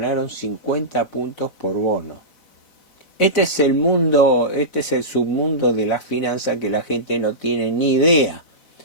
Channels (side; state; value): right; late; 4.0 ms